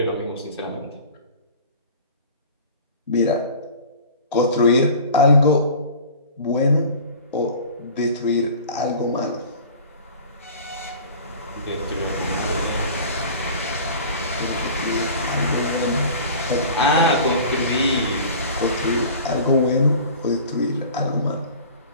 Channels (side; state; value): both; inverted; correlation -0.41